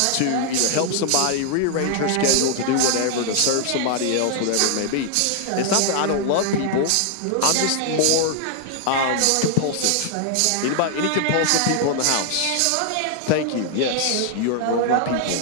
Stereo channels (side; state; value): both; different; correlation 0.00